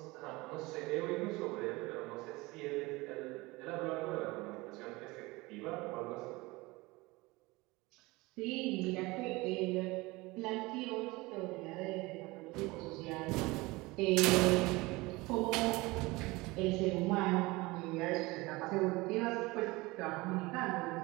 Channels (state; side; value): quieter; left; 22.4 dB